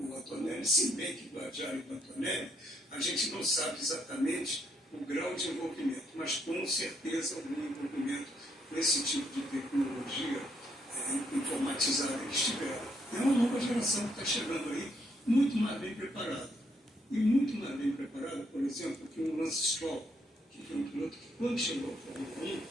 Antonelli. Se bem que o Adjar e o Antonelli, a gente não sabe exatamente o grau de envolvimento, mas com certeza algum envolvimento com esse tipo de tecnologia informatizada eles tiveram. É uma nova geração que está chegando aí, muito mais bem preparada. E muito mais bem preparada, por exemplo, que o Lance Stroll, que foi um piloto que, quando chegou ao Fórmula 1,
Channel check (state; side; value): normal; both; correlation 0.74